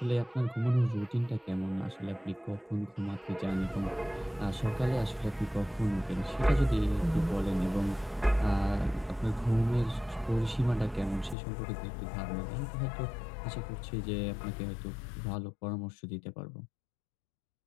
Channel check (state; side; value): drops out; right; at 11.4 s